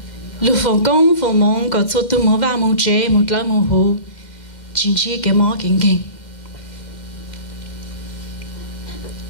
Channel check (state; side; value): late; right; 2.0 ms